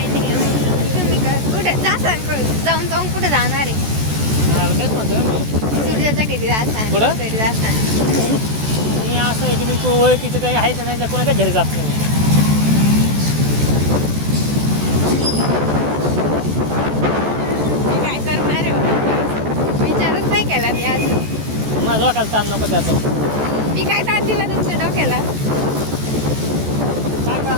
नाही तुम्ही कुठे जाऊन जाऊन कुठे जाणार आहे. तेच म्हणतो सूर्याच्या घरी जाता कुठं? घरी जाता. मी असं आहे की मी ओळखीचे काही आहेत ना त्या कोणाच्या घरी जात नाही. काय करणार आहे विचारच नाही केला मी अजून. माझा डोक्याला ताण नको त्याचा. मी काय ताण दिला तुमच्या डोक्याला. काय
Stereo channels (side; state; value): left; late; 14 ms